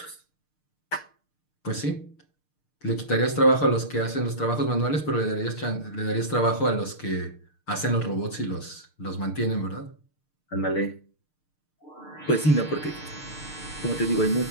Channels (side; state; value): right; late; 6.6 ms